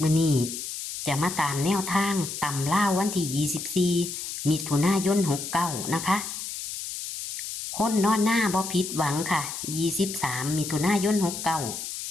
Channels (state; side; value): noise; left; hiss, 7 dB below the sound